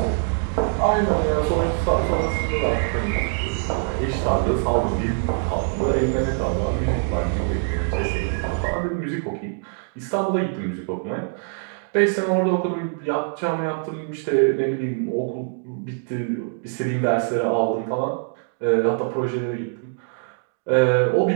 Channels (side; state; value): left; silent; 58 dB below the other